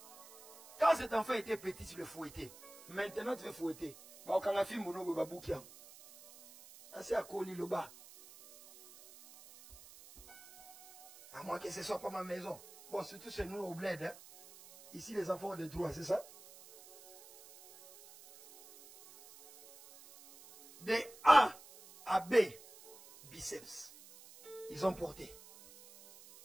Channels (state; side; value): noise; right; hiss, 19 dB below the sound